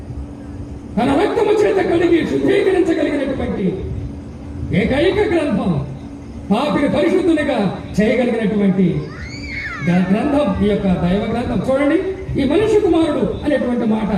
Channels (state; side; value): identical; both; correlation 1.00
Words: తన రక్తము చేత కడిగి శుద్ధీకరించగలిగినటువంటి ఏకైక గ్రంథం, పాపిని పరిశుద్ధునిగా చేయగలిగినటువంటి గ్రంథం ఈ యొక్క దైవ గ్రంథం. చూడండి, ఈ మనిషి కుమారుడు అనేటువంటి మాట